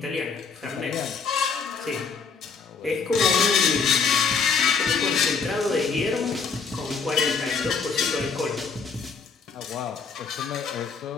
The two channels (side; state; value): right; quieter; 5.3 dB